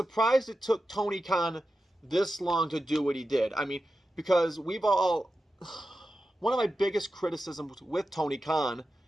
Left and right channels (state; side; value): normal; both; correlation 0.91